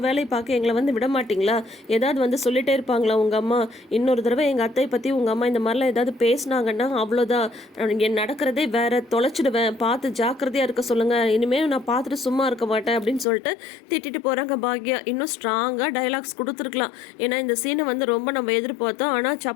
வேலையை பார்க்க எங்களை வந்து விட மாட்டிங்களா? ஏதாவது வந்து சொல்லிகிட்டே இருப்பாங்களா உங்கள் அம்மா? இன்னொரு தடவை எங்கள் அத்தையை பற்றி உங்கள் அம்மா இந்த மாதிரிலாம் ஏதாவது பேசினாங்கன்னா அவ்வளோதான், என் நடக்கிறதே வேற, தொலைச்சிடுவேன், பார்த்து ஜாக்கிரதையாக இருக்க சொல்லுங்கள், இனிமேல் நான் பார்த்துட்டு சும்மா இருக்க மாட்டேன் அப்படின்னு சொல்லிட்டு திட்டிட்டு போகிறாங்க பாக்யா. இன்னும் ஸ்ட்ராங்காக டைலாக்ஸ் கொடுத்துருக்கலாம். ஏன்னா இந்த சீனை வந்து ரொம்ப நம்ம எதிர்பார்த்தோம், ஆனால்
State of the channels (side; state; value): right; drops out; at 13.2 s